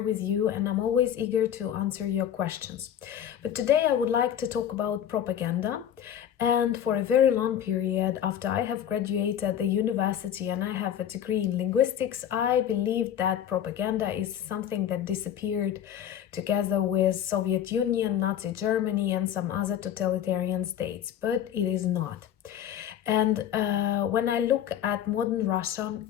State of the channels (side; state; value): right; quieter; 10.0 dB